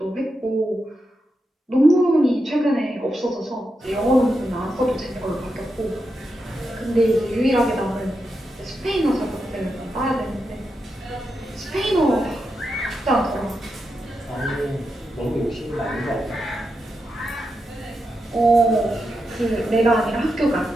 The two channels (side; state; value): both; normal; correlation 0.87